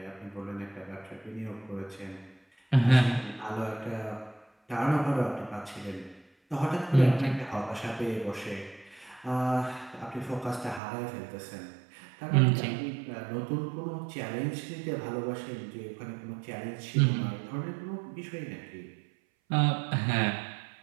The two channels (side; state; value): left; drops out; at 10.8 s